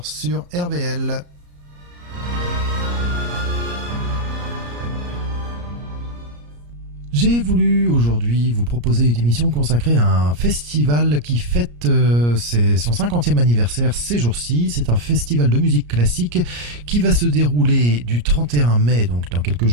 sur RVL. J'ai voulu aujourd'hui vous proposer une émission consacrée à un festival qui fête son 50e anniversaire ces jours-ci. C'est un festival de musique classique qui va se dérouler du 31 mai, donc dans quelques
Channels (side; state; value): left; late; 34 ms